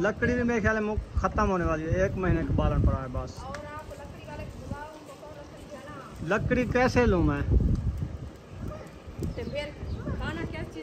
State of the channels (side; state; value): both; identical; correlation 1.00